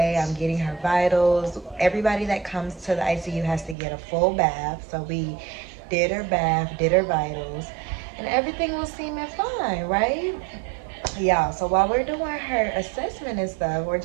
I'm getting her vitals. Everybody that comes to the ICU has to get a full bath. So we did her bath, did her vitals, and everything was seeming fine, right? Yeah, so while we're doing her assessment and stuff, we're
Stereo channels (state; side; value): drops out; left; at 3.8 s